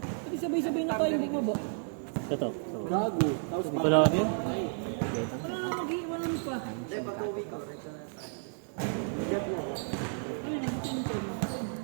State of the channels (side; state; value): left; silent; 56 dB below the other